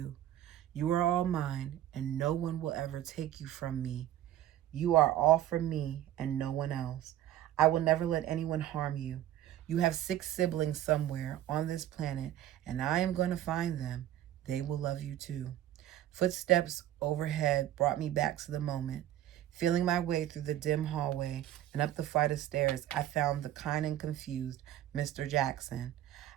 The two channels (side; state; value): left; quieter; 12.6 dB